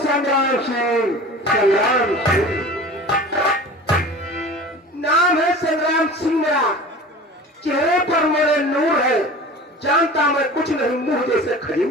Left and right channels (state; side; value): normal; both; correlation 0.38